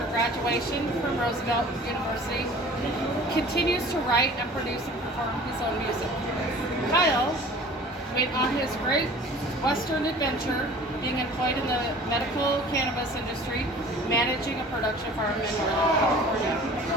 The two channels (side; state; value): both; normal; correlation 0.45